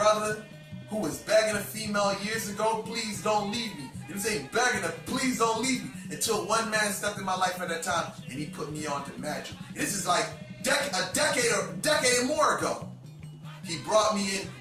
who was begging a female years ago, please don't leave me. You know what I'm saying? Begging her, please don't leave me. Until one man stepped in my life at that time and he put me on to magic. This is like a decade or more ago. He brought me in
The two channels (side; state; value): both; identical; correlation 1.00